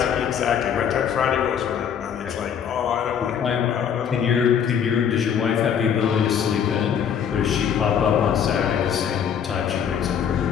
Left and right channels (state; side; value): quieter; right; 8.1 dB